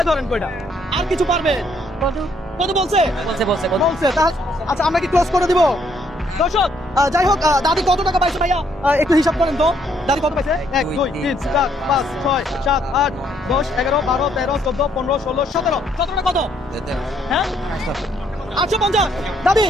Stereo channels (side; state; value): both; normal; correlation 0.69